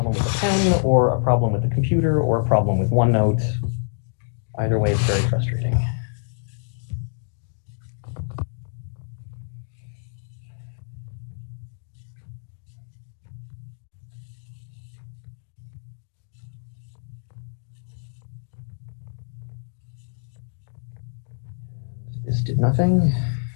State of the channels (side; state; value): right; silent; digital silence